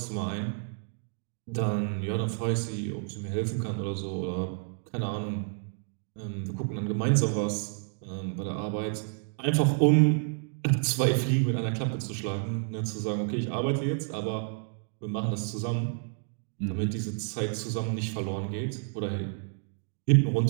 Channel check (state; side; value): silent; left; 58 dB below the other